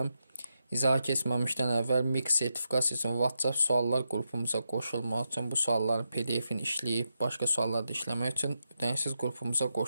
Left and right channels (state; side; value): inverted; both; correlation -0.85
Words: İzaha keçməmişdən əvvəl MİQ sertifikasiyasının WhatsApp suallar qrupumuza qoşulmaq üçün bu sualların PDF-ini işləyib başqa sualları da işləmək üçün ödənişsiz qrupumuza